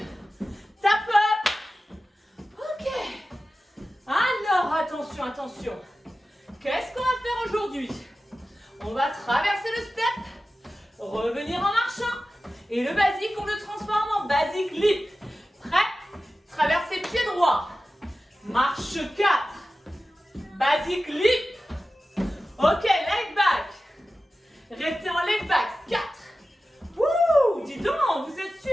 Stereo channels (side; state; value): both; normal; correlation 0.94